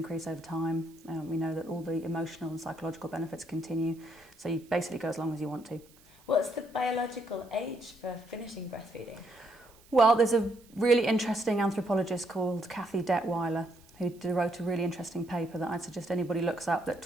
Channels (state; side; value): noise; right; hiss, 27 dB below the sound